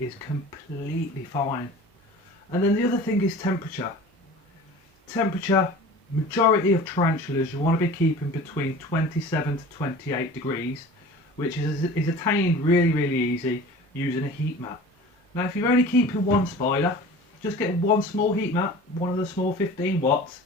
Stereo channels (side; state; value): both; normal; correlation 0.40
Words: completely fine. And then the other thing is temperature. Temperature, majority of tarantulas you want to be keeping between 27 to 28 degrees, which is attained really easy using a heat mat. Now if you're only keeping one spider, just get one small heat mat, one of the small 15 watts,